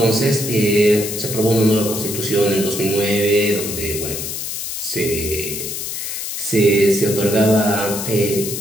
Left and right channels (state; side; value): noise; left; hiss, 5 dB below the sound